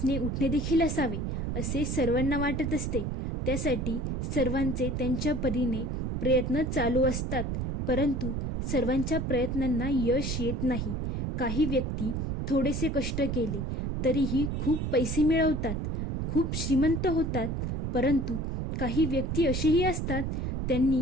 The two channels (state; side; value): noise; right; rumble, 1 dB below the sound